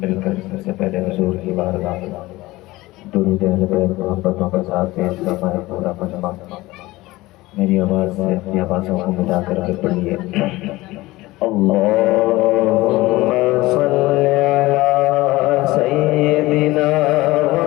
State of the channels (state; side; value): quieter; right; 19.2 dB